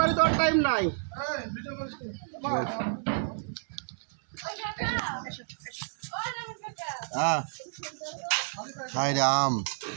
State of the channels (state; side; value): silent; left; 58 dB below the other